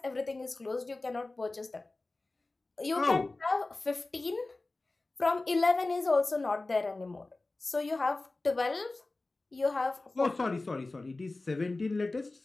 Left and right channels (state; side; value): quieter; right; 3.2 dB